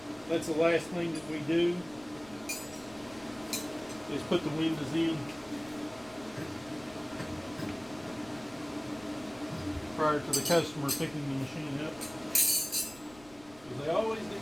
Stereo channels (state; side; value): noise; left; rumble, 23 dB below the sound